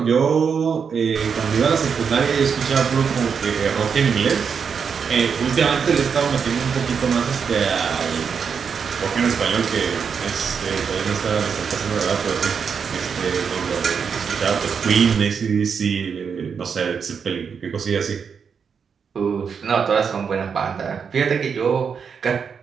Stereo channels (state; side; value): quieter; left; 6.4 dB